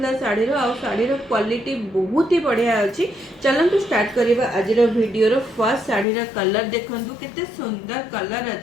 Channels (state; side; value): drops out; right; at 6.1 s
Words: शाढ़ीर आउ शाढ़ीर क्वालिटी बहुत ही बढ़िया अछि। चलंतु स्टार्ट करिबा आजिर वीडियो रो फर्स्ट शाढ़ीर कलर देखंतु केते सुंदर कलर